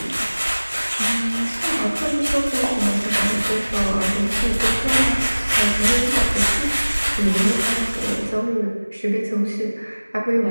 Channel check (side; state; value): both; inverted; correlation -1.00